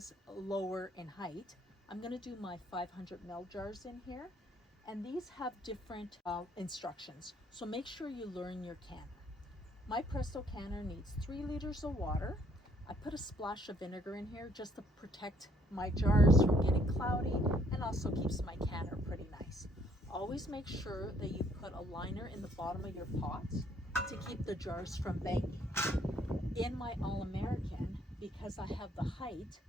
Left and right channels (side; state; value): both; normal; correlation 0.65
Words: lower in height, I'm going to do my 500 ml jars in here. And these have different instructions. So make sure you learn your canner. My Presto canner needs 3 liters of water. I put a splash of vinegar in here just to protect my jars from getting cloudy and also keeps my canner pretty nice. Always make sure that you put a liner in the bottom of your pots to keep the jars from banging. In my All-American, because I have the height,